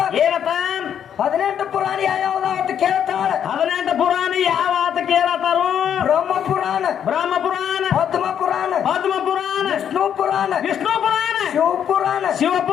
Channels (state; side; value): quieter; right; 8.9 dB